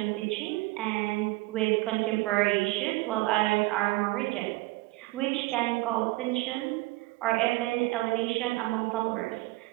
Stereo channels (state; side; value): quieter; left; 21.1 dB